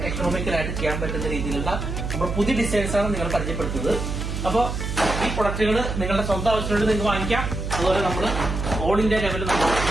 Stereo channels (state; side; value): noise; right; hum, 4 dB below the sound